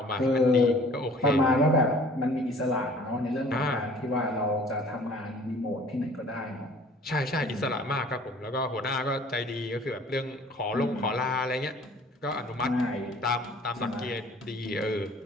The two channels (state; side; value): normal; both; correlation 0.51